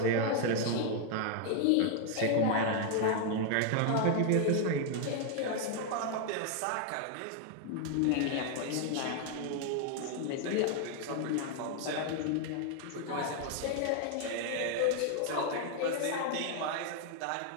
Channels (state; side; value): different; both; correlation 0.00